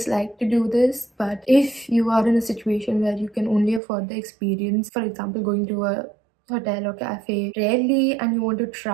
to do this, but if you are in a situation where you can only afford the experience, for example going to a hotel or cafe rarely, and you want to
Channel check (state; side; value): drops out; left; at 3.8 s